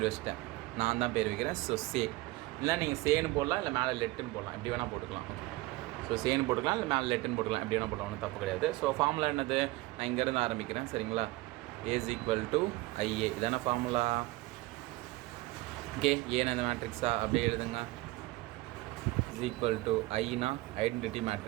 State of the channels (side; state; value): left; quieter; 20.1 dB